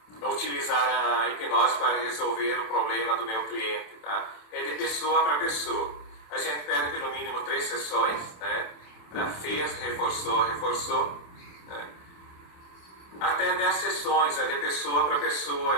utilizar a hipnose para resolver o problema do meu cliente? Tá? É de pessoa para pessoa. A gente pede pelo mínimo 3 sessões, né? Fez, reforçou, né? Até 10 sessões, é de pessoa para pessoa,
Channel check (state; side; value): late; right; 27 ms